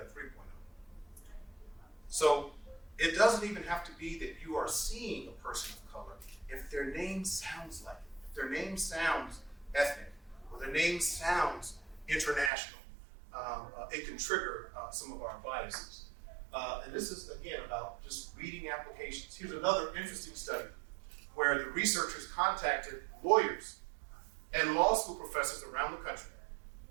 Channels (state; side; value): drops out; left; at 12.5 s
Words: 3.0. So it doesn't even have to be that you are seeing a person of color. If their name sounds like it, if their name sounds ethnic, or their name sounds international, it can trigger some of our biases. And this is, again, about just reading applications. Here's another interesting study where the researchers contacted lawyers and law school professors around the country.